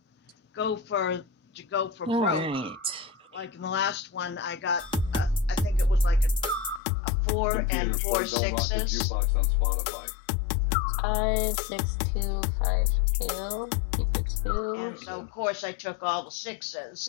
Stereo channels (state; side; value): drops out; right; at 6.8 s